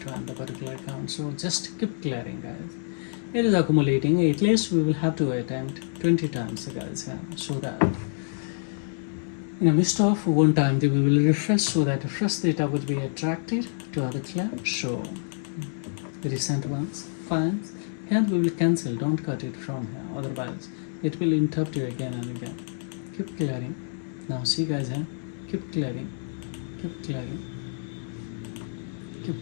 the particular account. So just keep clearing, guys. It is accumulating. At least we will have to attempt 20 times, guys, yeah, so that in a midst of one time we will refresh, so that the fresh data would be attracted to other clear. So recent ones, files. Here we will cancel, don't cut it from here, otherwise it will interrupt you again and again. Keep clearing. Now see, guys, here, keep clearing, keep clearing,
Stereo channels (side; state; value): right; silent; digital silence